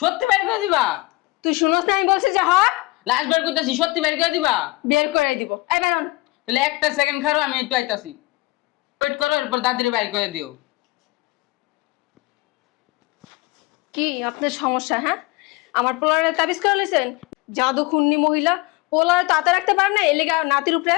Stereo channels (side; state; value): right; quieter; 21.6 dB